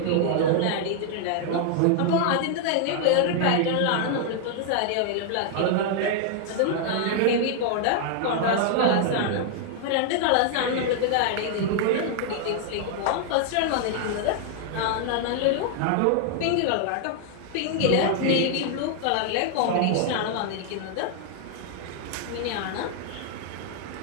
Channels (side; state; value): both; different; correlation 0.00